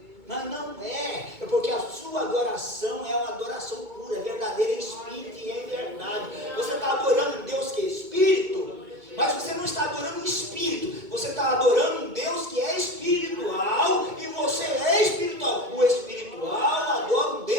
Mas não é porque a sua adoração é uma adoração pura, verdadeira, em espírito e em verdade. Você está adorando um Deus que é espírito, mas você não está adorando um espírito, você está adorando um Deus que é espiritual, e você é espiritual. O espiritual adora um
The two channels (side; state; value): left; late; 2.2 ms